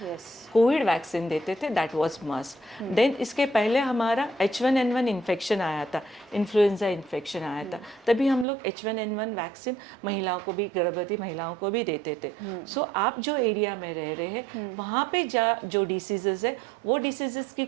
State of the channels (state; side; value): drops out; left; at 8.5 s